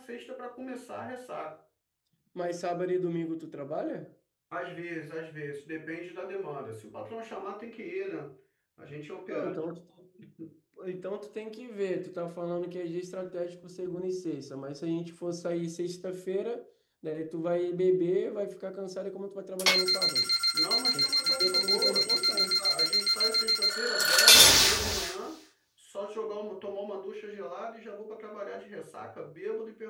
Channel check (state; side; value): identical; both; correlation 1.00